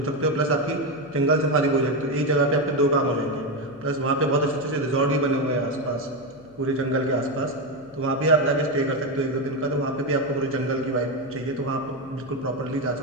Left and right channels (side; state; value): left; noise; hum, 23 dB below the sound